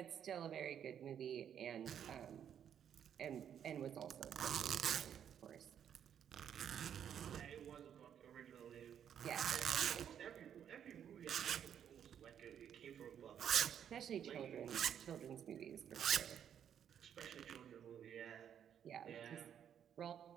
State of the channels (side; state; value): left; quieter; 9.0 dB